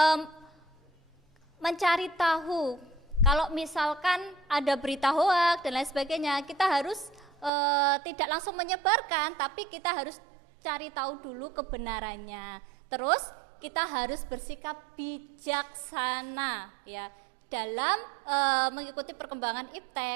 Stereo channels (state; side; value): drops out; left; at 7.5 s